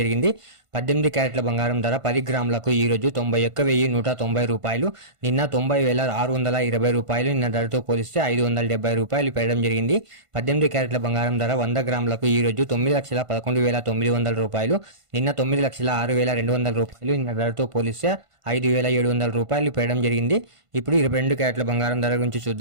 జరిగింది. 18 క్యారెట్ల బంగారం ధర 10 గ్రాములకు ఈ రోజు 91,190 రూపాయలు, నిన్న 90,620 రూపాయలు. నిన్న ధరతో పోలిస్తే 570 రూపాయలు పెరగడం జరిగింది. 18 క్యారెట్ల బంగారం ధర 100 గ్రాములకు ఈ రోజు 9,11,900 రూపాయలు, నిన్న 9,06,200 రూపాయలు. నిన్న ధరతో పోలిస్తే 5,700 రూపాయలు పెరగడం జరిగింది. ఇప్పుడు 22 క్యారెట్ల బంగారం ధర గురించి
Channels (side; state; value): left; late; 1.5 ms